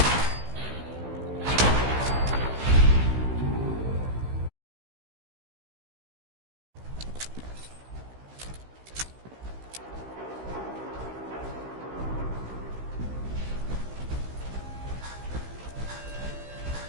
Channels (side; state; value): left; late; 16 ms